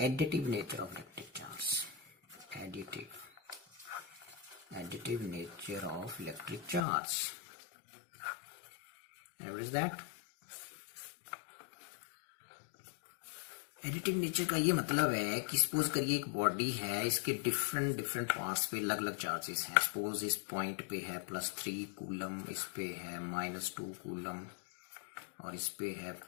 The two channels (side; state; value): right; drops out; at 6.9 s